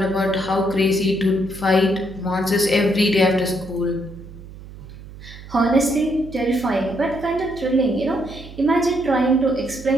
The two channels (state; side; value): noise; right; hum, 16 dB below the sound